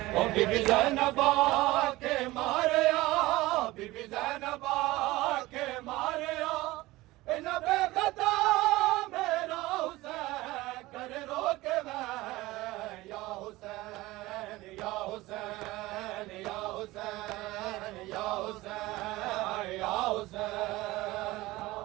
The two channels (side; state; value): left; quieter; 19.1 dB